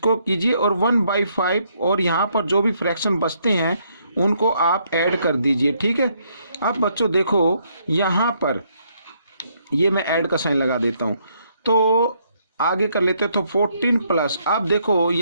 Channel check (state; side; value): inverted; both; correlation -0.71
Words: कीजिए और 1/5 और यहाँ पर जो भी फ्रैक्शन बचते हैं उनको आप ऐड कर दीजिए। ठीक है, अब बच्चों देखो यहाँ पर ये मैं ऐड का साइन लगा देता हूँ, तो आगे कर लेते हैं। तो 14 प्लस, अब देखो